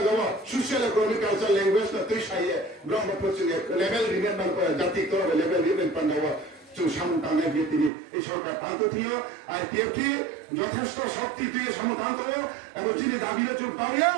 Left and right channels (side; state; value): left; drops out; at 7.9 s